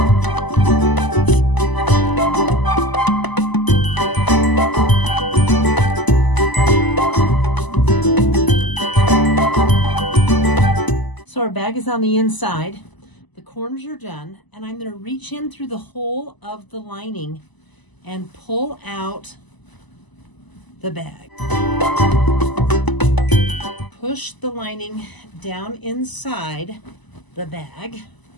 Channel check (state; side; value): late; right; 1.0 ms